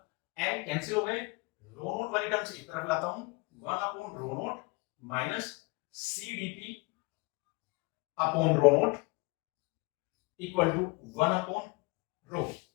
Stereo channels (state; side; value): quieter; right; 28.0 dB